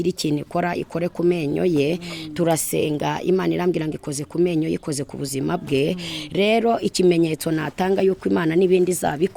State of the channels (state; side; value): identical; both; correlation 1.00